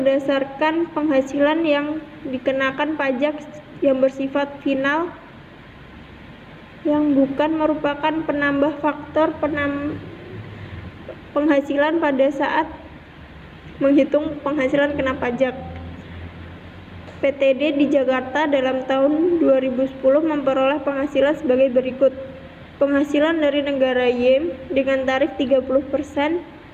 penghasilan yang dikenakan pajak yang bersifat final yang bukan merupakan penambah faktor penghasilan pada saat menghitung penghasilan kena pajak. PTD di Jakarta dalam tahun 2010 memperoleh penghasilan sebagai berikut. Penghasilan dari negara Y dengan tarif 30%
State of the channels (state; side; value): identical; both; correlation 1.00